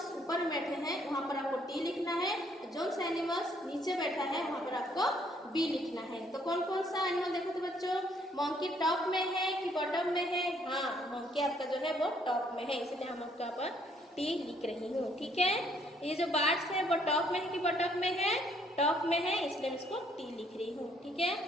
ऊपर में बैठे हैं वहाँ पर आपको टी लिखना है। जोन सा एनिमल्स नीचे बैठा है वहाँ पर आपको बी लिखना है। तो कौन कौन सा एनिमल देखो तो बच्चों, मंकी टॉप में है कि बॉटम में है? हाँ, मंकी आपका जो है वो टॉप में है, इसलिए हम आपका पर टी लिख रही हूँ। ठीक है, ये जो बर्ड्स है वो टॉप में है कि बॉटम में है? टॉप में है, इसलिए मैं इसको टी लिख रही हूँ। ठीक है,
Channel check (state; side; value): normal; both; correlation 0.66